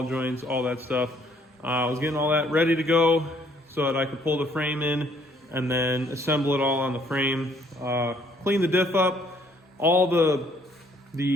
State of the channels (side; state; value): both; normal; correlation 0.64